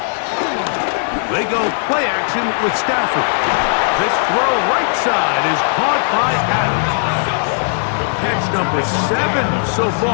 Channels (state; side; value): silent; right; digital silence